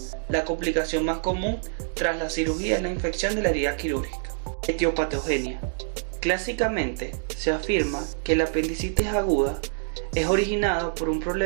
La complicación más común tras la cirugía es la infección de la herida quirúrgica. Etiopatogenia. Clásicamente se afirma que la apendicitis aguda es originada por un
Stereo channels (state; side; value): silent; left; digital silence